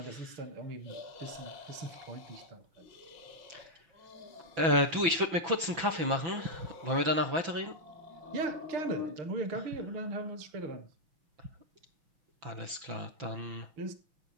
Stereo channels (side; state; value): left; late; 6.0 ms